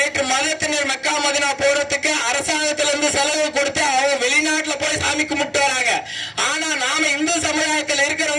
மதத்தினர் மெக்கா மதினா போறதுக்கு அரசாங்கத்துல இருந்து செலவு கொடுத்து அவங்க வெளிநாட்டுல போய் சாமி கும்பிட்டு வராங்க. ஆனா நாம இந்து சமுதாயத்தில்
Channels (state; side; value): identical; both; correlation 1.00